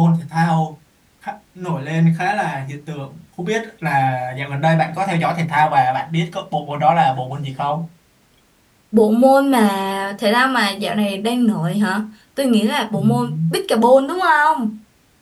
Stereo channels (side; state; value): both; identical; correlation 1.00